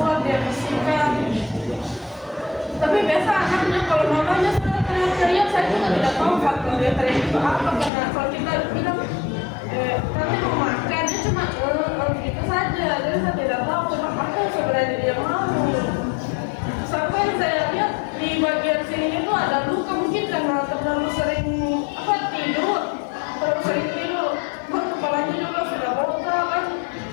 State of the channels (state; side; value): drops out; right; at 7.9 s